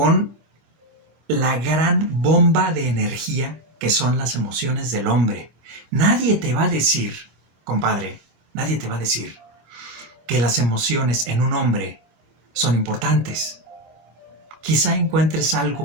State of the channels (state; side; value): late; left; 26 ms